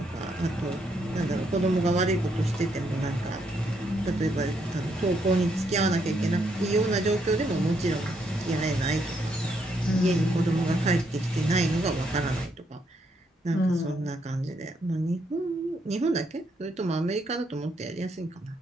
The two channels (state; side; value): normal; both; correlation 0.75